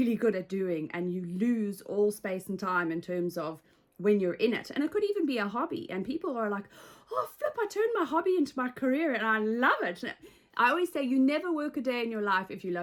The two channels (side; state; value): both; identical; correlation 1.00